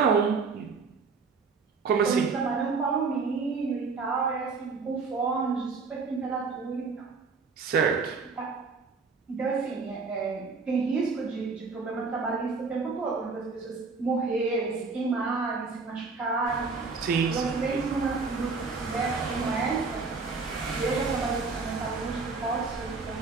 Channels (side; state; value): left; quieter; 4.6 dB